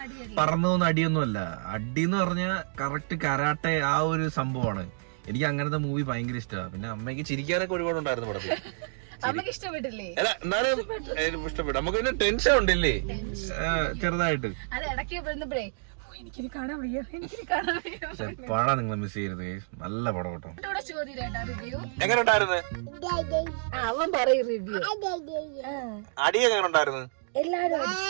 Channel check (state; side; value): silent; left; digital silence